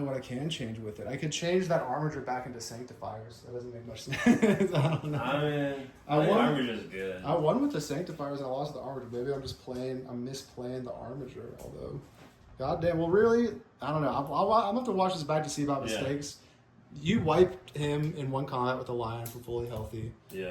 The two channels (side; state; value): both; identical; correlation 1.00